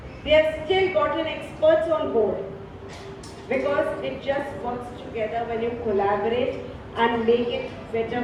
They have still gotten experts on board. Because it just works together when you collaborate and make it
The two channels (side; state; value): both; identical; correlation 1.00